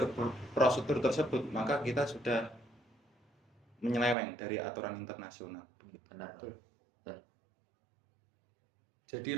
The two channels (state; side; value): drops out; left; at 4.2 s